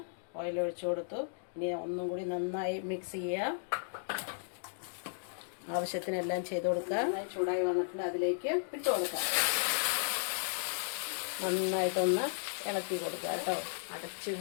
ഓയിൽ ഒഴിച്ചു കൊടുത്തു. ഇനി ഒന്നും കൂടി നന്നായി മിക്സ് ചെയ്യുക. ആവശ്യത്തിനെല്ലാം ചെയ്ത് കൊടുക്കുക. നന്നായി ചൂടായി വന്നിട്ടുണ്ട്. അതിലേക്ക് ഇട്ട് കൊടുക്കാം. നന്നായിട്ടൊന്ന് ഇളക്കി കൊടുക്കുക കേട്ടോ. അടച്ച്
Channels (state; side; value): silent; right; digital silence